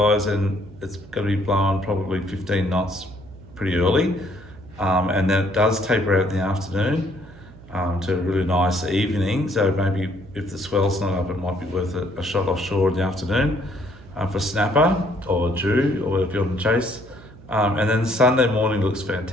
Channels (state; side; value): noise; right; hum, 20 dB below the sound